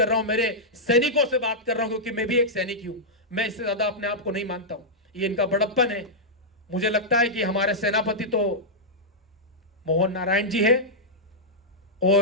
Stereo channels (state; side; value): normal; both; correlation -0.09